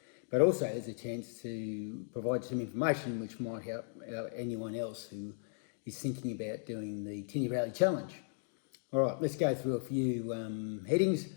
But also there's a chance to provide some information which might help anyone else who is thinking about doing the Tinny Rally Challenge. All right, let's go through a few headings.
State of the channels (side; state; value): right; silent; digital silence